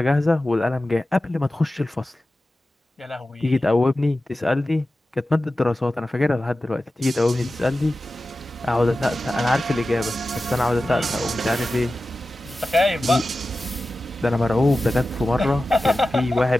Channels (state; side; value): normal; both; correlation 0.94